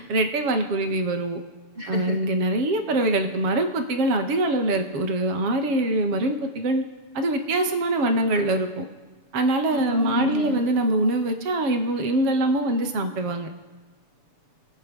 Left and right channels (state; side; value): late; left; 7.0 ms